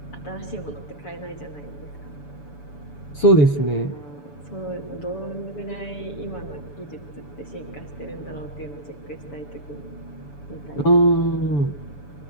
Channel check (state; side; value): late; right; 6.9 ms